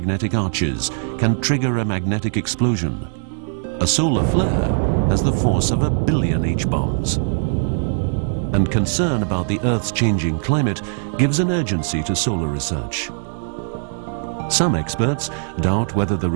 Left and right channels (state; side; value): silent; left; digital silence